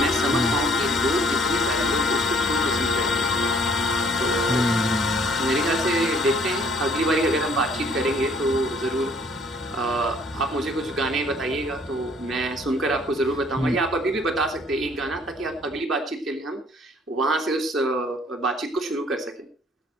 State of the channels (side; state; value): both; normal; correlation 0.60